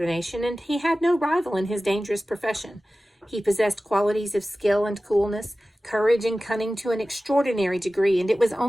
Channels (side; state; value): both; normal; correlation 0.96